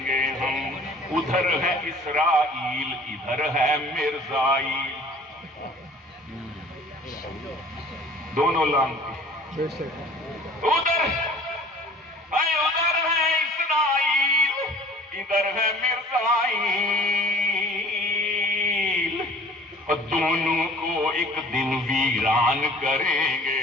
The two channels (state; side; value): normal; both; correlation 0.48